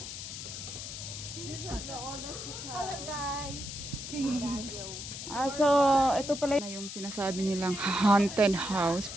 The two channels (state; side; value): noise; left; hiss, 8 dB below the sound